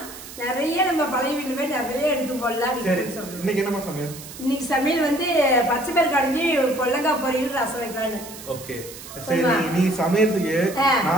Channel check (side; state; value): right; noise; hiss, 14 dB below the sound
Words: நிறைய நம்ம பழைய வீட்டுல போய் நிறைய எடுத்து போடலாம். இன்னைக்கு என்ன சமையல்? இன்னைக்கு சமையல் வந்து பச்சை பயிர் கடைஞ்சி பொல்லங்காய் பொரியல் ரசம் வைக்கலான்னு. ஓகே, சரி. நீ சமையலுக்கு